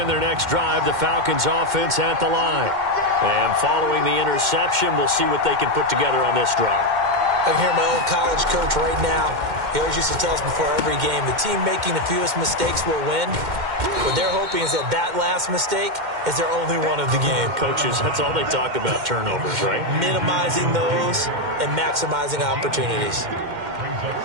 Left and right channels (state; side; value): late; left; 2.1 ms